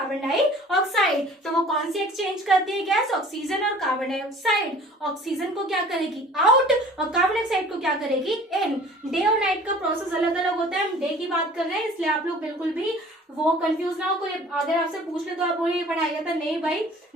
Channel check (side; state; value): both; normal; correlation 0.48